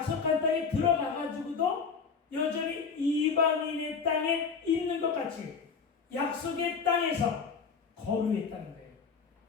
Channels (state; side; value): quieter; right; 5.6 dB